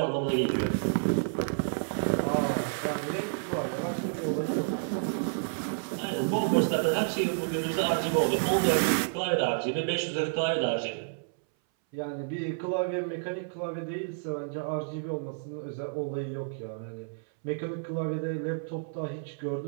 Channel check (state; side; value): silent; left; 57 dB below the other